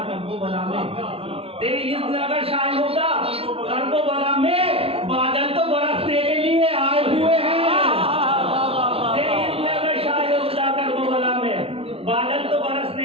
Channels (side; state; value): left; late; 0.28 ms